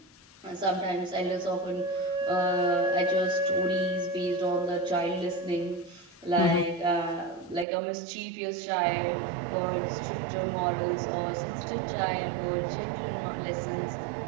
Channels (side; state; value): left; drops out; at 7.7 s